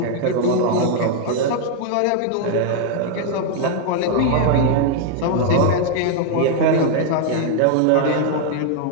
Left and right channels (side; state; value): both; different; correlation 0.00